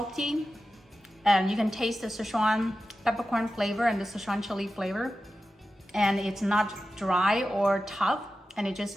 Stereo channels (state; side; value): normal; both; correlation 0.93